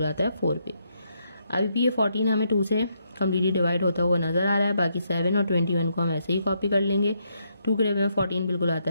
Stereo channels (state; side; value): inverted; both; correlation -0.77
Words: आता है 4 पे। अभी भी ये 14 हमें 2 से कम्प्लीटली डिवाइड होता हुआ नजर आ रहा है, बाकी 7 और 21 को हम ऐसे ही कॉपी कर लेंगे। 2 के टेबल में 14 बिल्कुल